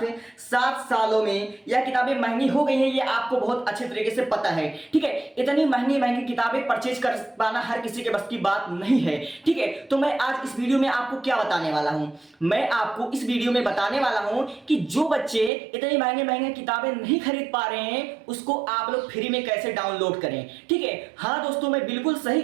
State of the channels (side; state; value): left; drops out; at 15.5 s